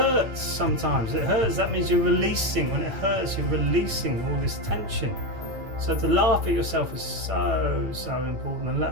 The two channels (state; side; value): late; left; 9.0 ms